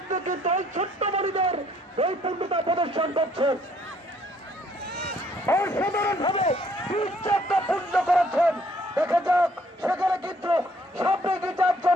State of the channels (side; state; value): both; normal; correlation 0.64